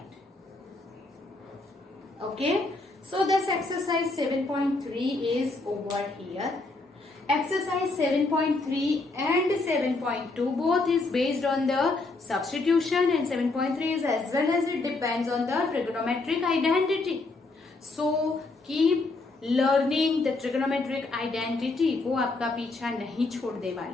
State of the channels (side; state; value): right; quieter; 3.4 dB